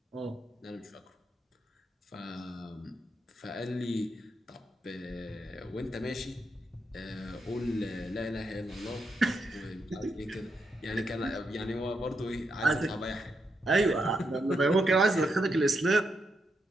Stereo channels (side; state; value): both; normal; correlation 0.82